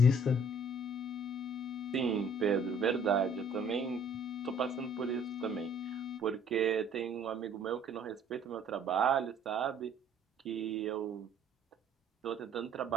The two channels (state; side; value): normal; both; correlation 0.58